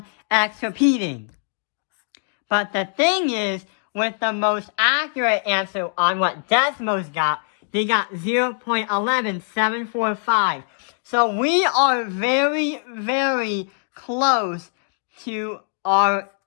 repeating. But the thing is, with the most accurate answer on what Desmos got, they got 0.11745. So we are very, very close to our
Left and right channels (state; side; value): silent; right; digital silence